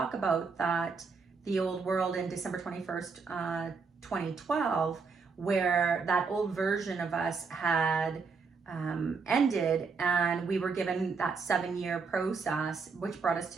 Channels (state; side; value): quieter; left; 4.9 dB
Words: about that, the old world in December 21st, 2012, where that old version of us had ended, and we were given that 7-year process, which brought us